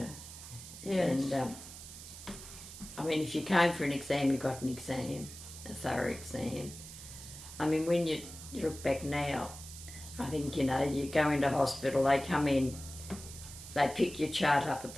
Yes. And, I mean, if you came for an exam, you got an exam, a thorough exam. I mean, when you look back now, I think, you know, you go into hospital, they come in, they pick your chart up at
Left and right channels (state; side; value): noise; right; hiss, 13 dB below the sound